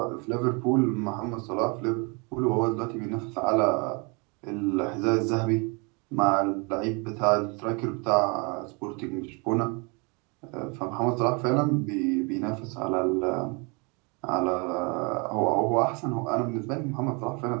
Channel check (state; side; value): quieter; left; 31.6 dB